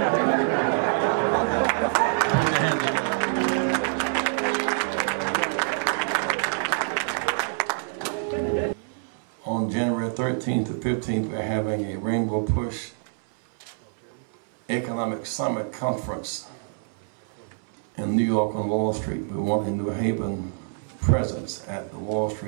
hands together. On January 13th to 15th, we're having a Rainbow Push Economic Summit Conference in New York on Wall Street. We want a New Haven presence at the Wall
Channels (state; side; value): silent; left; 61 dB below the other